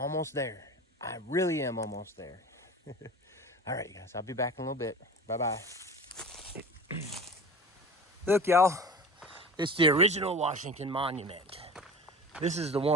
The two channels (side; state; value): both; normal; correlation 0.35